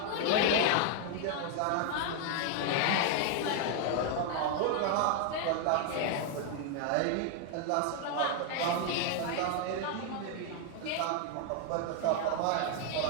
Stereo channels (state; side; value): different; both; correlation 0.00